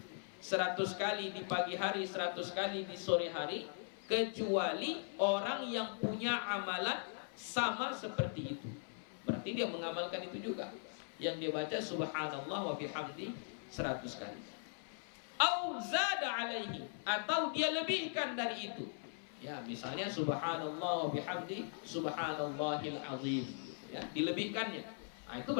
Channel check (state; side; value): silent; right; 51 dB below the other